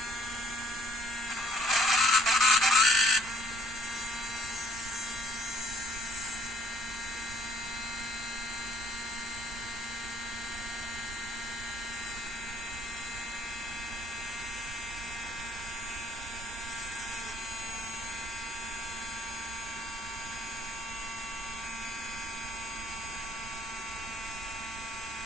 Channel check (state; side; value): noise; right; rumble, 13 dB below the sound